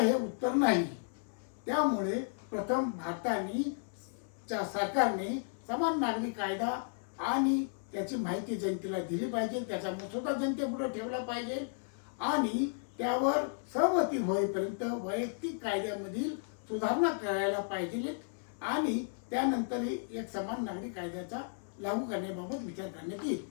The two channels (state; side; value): silent; right; 55 dB below the other